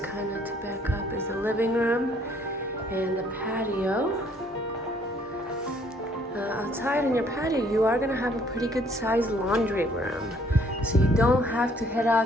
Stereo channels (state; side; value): normal; both; correlation 0.62